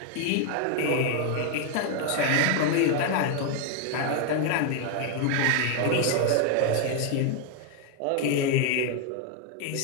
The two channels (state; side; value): different; both; correlation 0.01